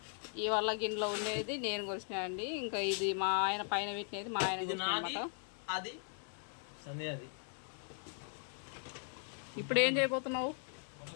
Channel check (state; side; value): silent; right; 52 dB below the other